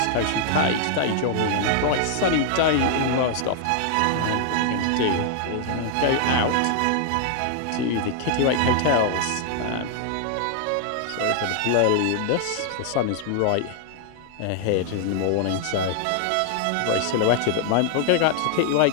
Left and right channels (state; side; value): different; both; correlation 0.00